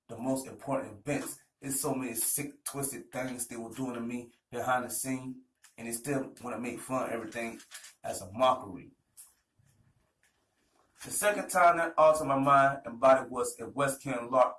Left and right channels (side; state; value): both; identical; correlation 1.00